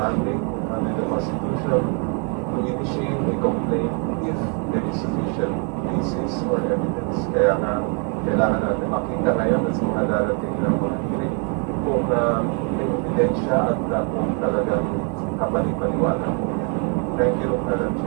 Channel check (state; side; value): quieter; left; 38.6 dB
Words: under the Constitution to initiate a complaint if there is sufficient basis or evidence. Kaya nga, kailangan natin makita ngayon at sa mga darating ng mga hearing kung may ebidensya at kung talagang kapani-paniwala po yan. Thank you, Madam